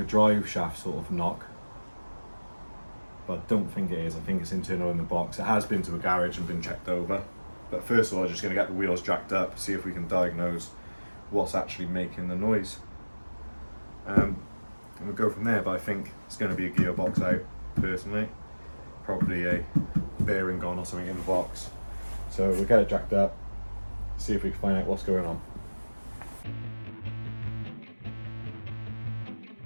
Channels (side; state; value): both; inverted; correlation -1.00